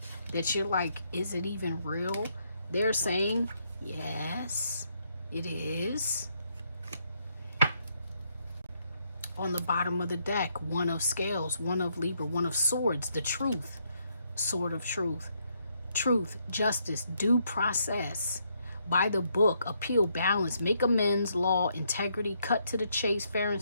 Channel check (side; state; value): both; inverted; correlation -0.74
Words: that you're like, is it even real? They're saying, yes, it is. On the bottom of the deck, one of scales, one of Libra, one of swords, the truth, sword of truth. Truth, justice, due process. By the book, appeal, balance, make amends, law, integrity, cut to the chase, fair and